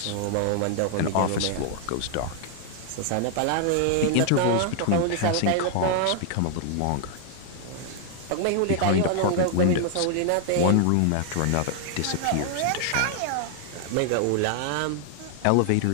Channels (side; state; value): both; different; correlation 0.00